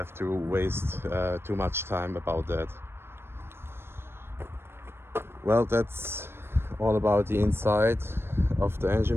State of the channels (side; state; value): left; late; 0.12 ms